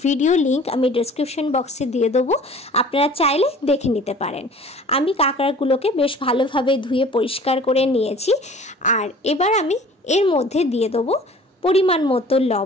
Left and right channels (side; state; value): both; normal; correlation 0.47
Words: ভিডিও লিংক আমি ডেসক্রিপশন বক্সে দিয়ে দেবো, আপনারা চাইলে দেখে নিতে পারেন। আমি কাঁকড়াগুলোকে বেশ ভালোভাবে ধুয়ে পরিষ্কার করে নিয়েছি। আর এবার আমি এর মধ্যে দিয়ে দেবো পরিমাণ মতো